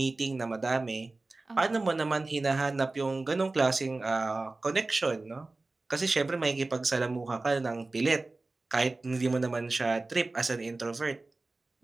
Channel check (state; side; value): quieter; left; 3.3 dB